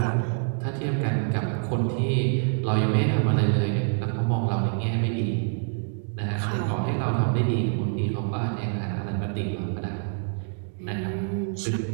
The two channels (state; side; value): silent; left; 61 dB below the other